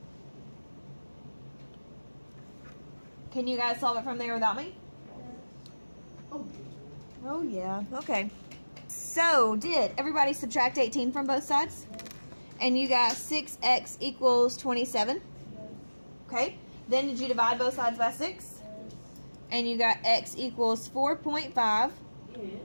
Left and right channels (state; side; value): inverted; both; correlation -1.00